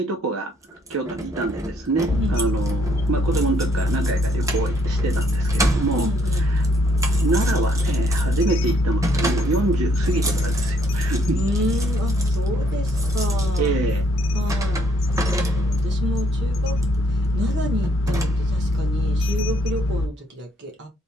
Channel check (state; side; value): normal; both; correlation 0.68